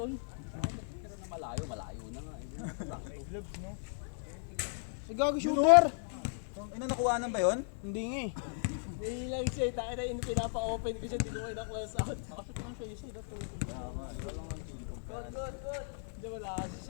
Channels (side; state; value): right; silent; 54 dB below the other